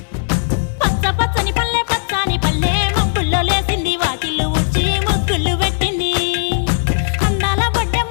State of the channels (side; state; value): right; silent; digital silence